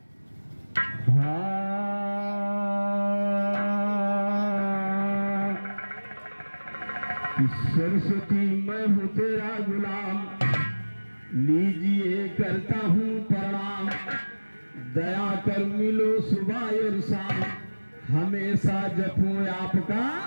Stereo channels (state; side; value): inverted; both; correlation -1.00